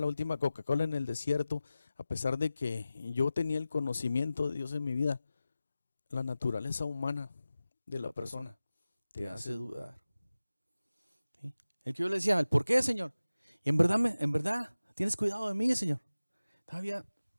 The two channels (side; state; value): both; inverted; correlation -0.96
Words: última Coca-Cola en el desierto, a pesar de que yo tenía el conocimiento de Dios en mi vida, la naturaleza humana de la persona te hace dudar. ¿Sí? El que yo le decía, ¿por qué, Señor? Y en verdad, tienes cuidado de mí, Señor. Todavía